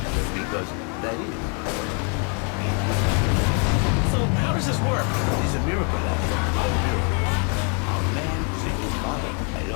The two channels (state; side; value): quieter; right; 38.1 dB